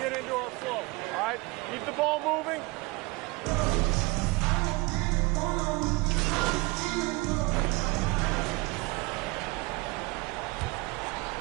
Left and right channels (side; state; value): left; quieter; 24.1 dB